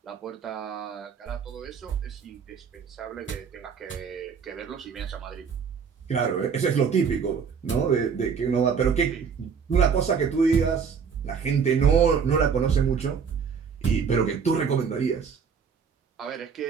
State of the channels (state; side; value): quieter; left; 6.4 dB